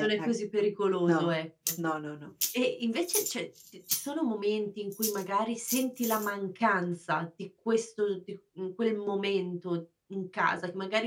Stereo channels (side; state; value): both; identical; correlation 1.00